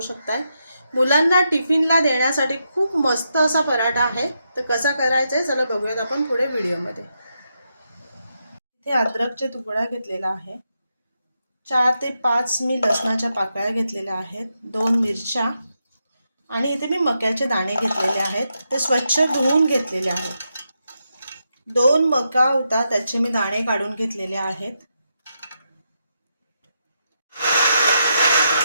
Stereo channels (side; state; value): both; inverted; correlation -0.84